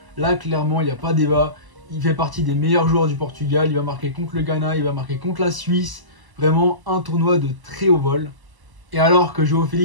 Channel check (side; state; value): left; late; 1.0 ms